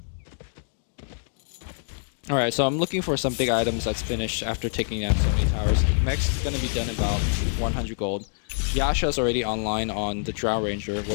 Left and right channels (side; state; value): right; silent; digital silence